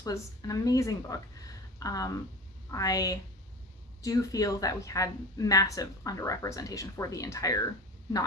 was an amazing book. I do feel that we had massive underrepresentation for the entire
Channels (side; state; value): both; normal; correlation 0.33